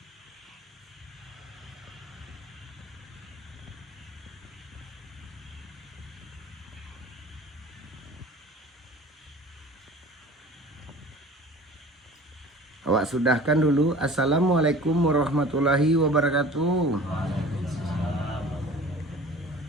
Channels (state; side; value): normal; both; correlation 0.43